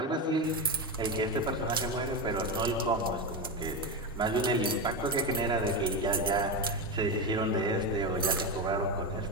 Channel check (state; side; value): normal; both; correlation 0.14